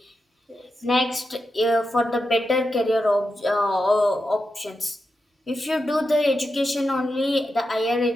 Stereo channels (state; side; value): normal; both; correlation 0.88